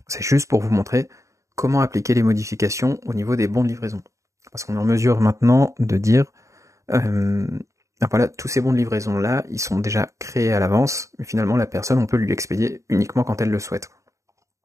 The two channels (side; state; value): left; late; 0.15 ms